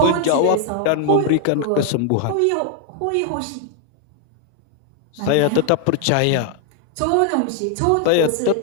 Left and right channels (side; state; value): both; different; correlation 0.00